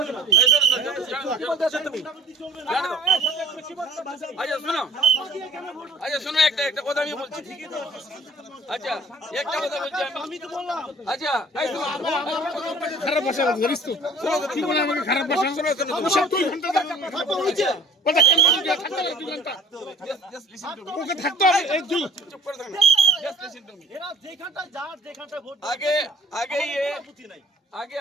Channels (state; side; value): normal; both; correlation 0.51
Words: আচ্ছা শোনো, একটা কথা আমি বলছি। আচ্ছা একটা কথা বলছি আমি তো বললাম। আচ্ছা খারাপ ভাষা বলিস তো। কি বলে আমাকে খারাপ ভাষা শোনাচ্ছ? 2 ঘন্টা কথা হয়েছে। কথা কেন বলি যে থাকতে হবে 2 ঘন্টা? ওকে থাকতে হবে এই দুই। চুপ করে থাকুন। Just listen to me. এরা যেখানটা ভোট আগে